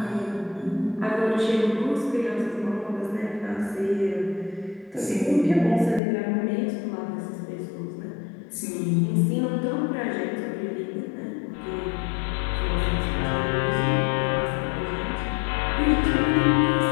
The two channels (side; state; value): right; drops out; at 6.0 s